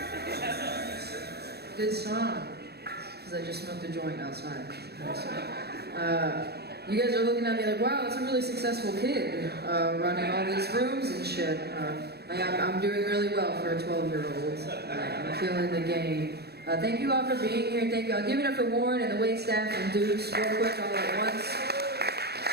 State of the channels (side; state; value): left; late; 0.47 ms